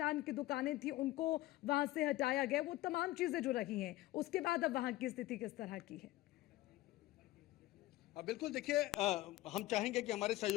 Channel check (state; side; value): quieter; right; 16.9 dB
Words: की दुकानें थी उनको वहां से हटाया गया, वो तमाम चीजें जो रही हैं, उसके बाद अब वहां की स्थिति किस तरह की है? बिल्कुल, देखिए हम चाहेंगे कि हमारे